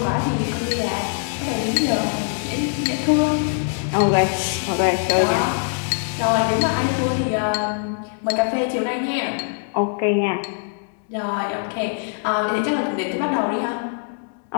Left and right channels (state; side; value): silent; right; 57 dB below the other